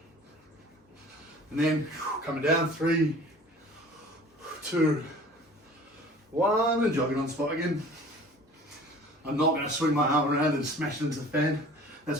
And then coming down, 3, 2, 1, and jogging on the spot again. I'm not going to swing my arm around and smash it into the fan.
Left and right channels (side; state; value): both; normal; correlation 0.46